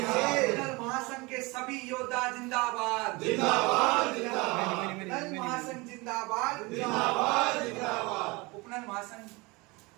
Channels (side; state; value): left; quieter; 25.0 dB